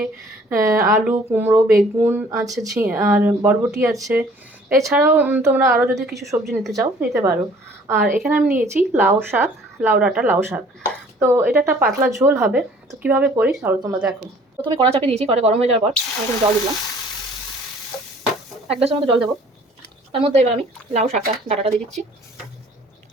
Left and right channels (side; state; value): both; normal; correlation 0.54